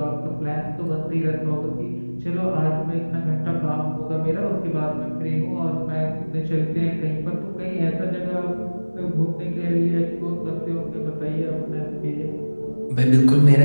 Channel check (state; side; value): inverted; both; correlation -1.00